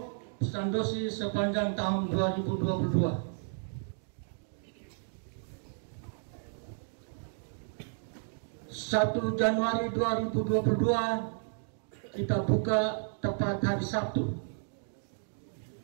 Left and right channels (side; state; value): left; silent; digital silence